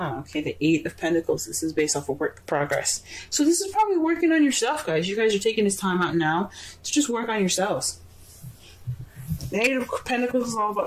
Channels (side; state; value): both; identical; correlation 1.00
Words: the Eight of Pentacles. This is based off of work progress. So this is probably working on yourself, guys. You guys are taking this time out now to just work on yourselves. The Eight of Pentacles is all